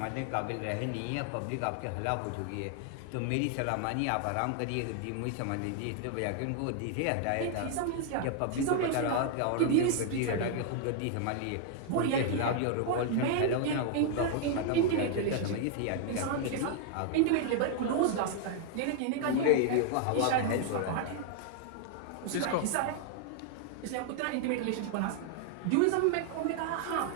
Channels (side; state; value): both; different; correlation 0.00